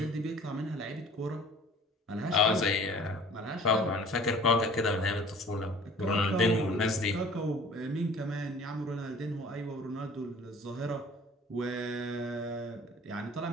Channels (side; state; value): both; normal; correlation 0.48